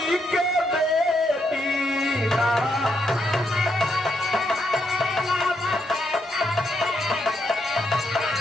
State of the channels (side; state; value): both; normal; correlation 0.78